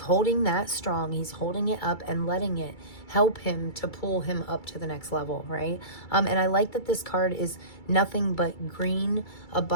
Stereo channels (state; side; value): late; right; 2.3 ms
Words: holding that strong. He's holding it up and letting it help him to pull him up to the next level, right? And I like that this card is nothing but green,